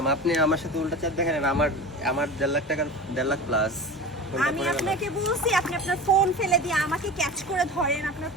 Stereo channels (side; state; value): both; normal; correlation 0.32